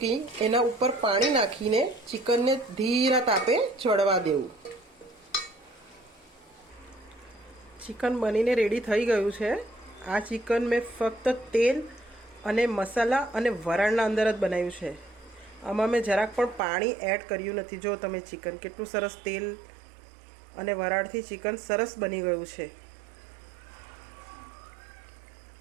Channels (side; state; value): left; drops out; at 16.6 s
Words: એના ઉપર પાણી નાખીને ચિકનને ધીરા તાપે ચડવા દેવું। ચિકન બનીને રેડી થઈ ગયું છે। આ ચિકન મેં ફક્ત તેલ અને મસાલા અને વરાળના અંદર જ બનાવ્યું છે। આમાં મેં જરાક પણ પાણી એડ કર્યું નથી। જો તમે ચિકન કેટલું સરસ તેલ અને વરાળથી ચિકન સરસ બની ગયું છે।